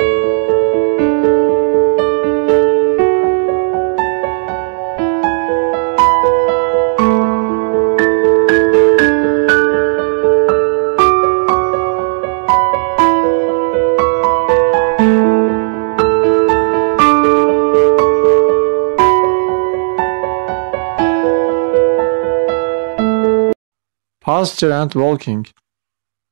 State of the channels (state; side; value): silent; left; digital silence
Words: Posture and walking.